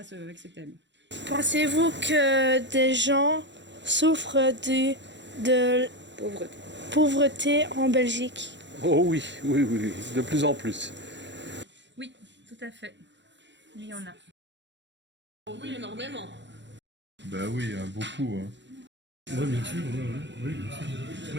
ce thème. Pensez-vous que des gens souffrent de pauvreté en Belgique? Oh oui, oui, de plus en plus. Oui, tout à fait. Il y en a. Oh oui, énormément. Bah oui, hein, beaucoup. Hein. Oui, bien sûr, oui, bien sûr.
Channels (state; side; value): late; left; 0.52 ms